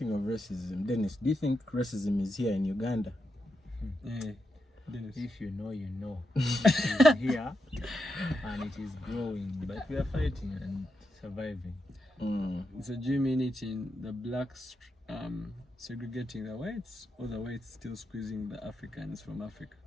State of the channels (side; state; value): both; normal; correlation 0.85